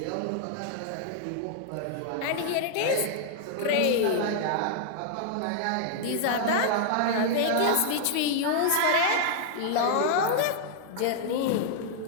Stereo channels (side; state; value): both; different; correlation 0.00